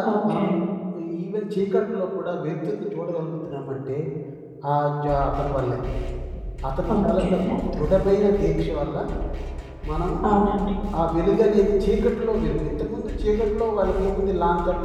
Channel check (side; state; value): both; identical; correlation 1.00